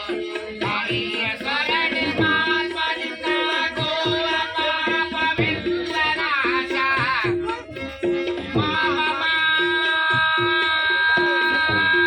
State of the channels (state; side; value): identical; both; correlation 1.00